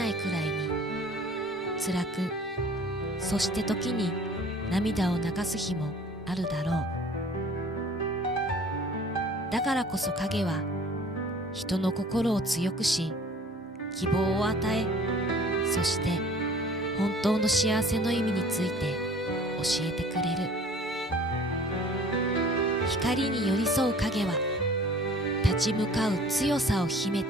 いくらいに辛く、そして時に涙を流す日もあるだろう。だからこそ影は人の心を強くし、希望を与え、そして本当の幸せの意味について教えてくれる。光に寄り添う影は立ち向かう強さを秘め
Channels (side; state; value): both; normal; correlation 0.49